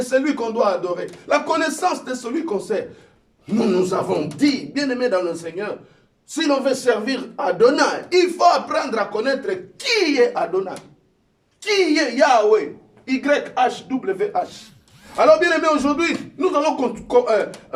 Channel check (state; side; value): identical; both; correlation 1.00